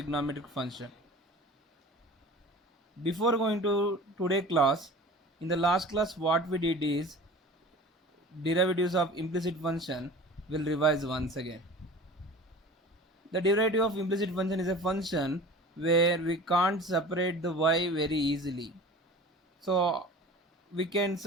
function. Before going to today class, in the last class what we did is derivatives of implicit function will revise once again. The derivative of implicit function is a function where we can't separate the y very easily. So we can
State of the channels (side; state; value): both; normal; correlation 0.40